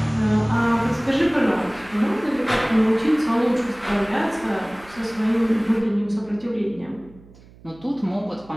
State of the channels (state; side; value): noise; right; hum, 24 dB below the sound